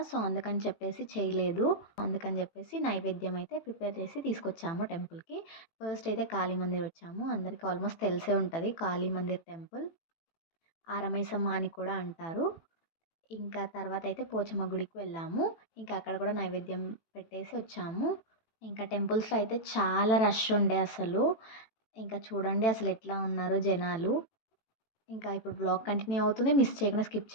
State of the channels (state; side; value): late; right; 18 ms